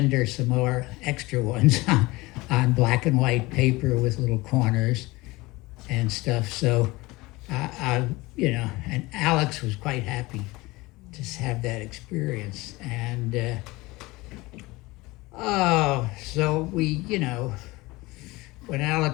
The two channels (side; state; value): right; quieter; 21.7 dB